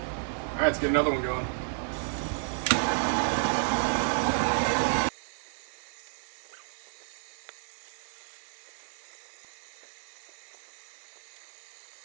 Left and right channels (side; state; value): left; silent; digital silence